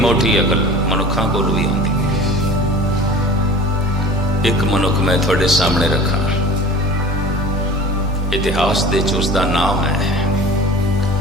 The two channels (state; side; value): normal; both; correlation 0.41